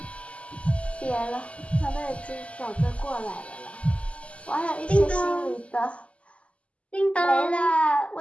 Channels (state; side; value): late; right; 0.060 ms